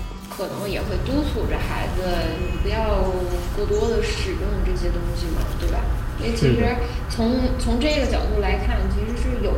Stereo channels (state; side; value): identical; both; correlation 1.00